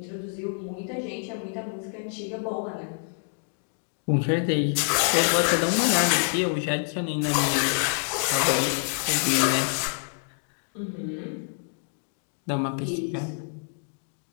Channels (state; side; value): silent; right; 60 dB below the other